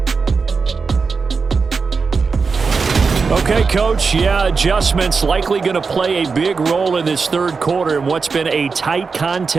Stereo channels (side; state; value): left; quieter; 4.9 dB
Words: Okay, Coach, yeah, adjustments likely going to play a big role in this third quarter in what's been a tight